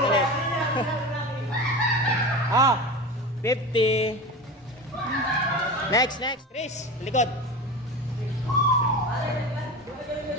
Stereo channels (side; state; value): both; normal; correlation 0.28